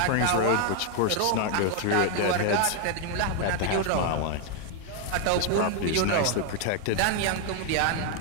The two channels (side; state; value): both; different; correlation 0.01